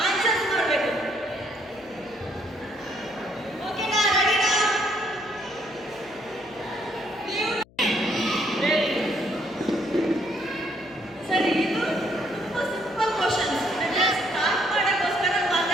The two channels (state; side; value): noise; left; hum, 27 dB below the sound